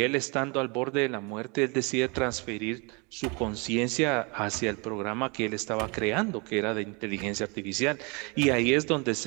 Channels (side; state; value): left; quieter; 30.5 dB